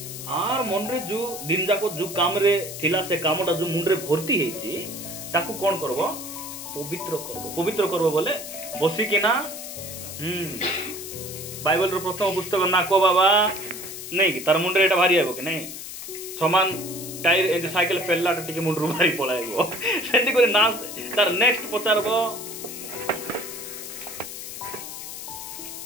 आर मन रे जो दिन जाक जो काम रे थिला से कामटा जो मुंड रे भर्ती हेची ताकू कोन करबो पवित्र करबो बोले बसी कि ना बाइबल रो प्रथम पुस्तक ना को बाबा नहीं कि तार मुंडे एटा भारी आबो कि नहीं समान टायर ए साइकिल पेल्ला टिके मुंड रो भारी पळाइबो सेंती करे ना तार नेक्स्ट पचारबो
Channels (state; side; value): noise; left; hiss, 9 dB below the sound